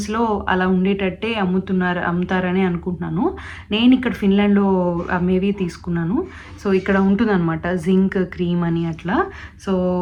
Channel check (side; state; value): both; identical; correlation 1.00